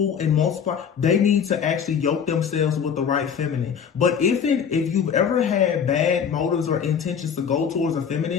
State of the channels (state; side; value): quieter; right; 7.3 dB